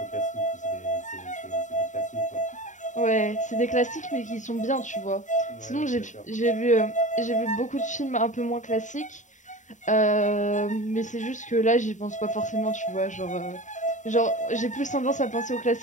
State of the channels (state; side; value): late; right; 0.36 ms